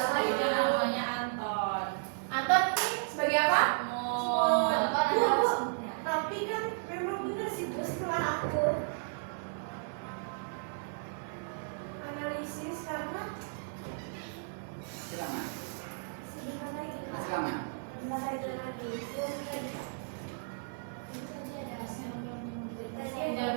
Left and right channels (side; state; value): left; silent; digital silence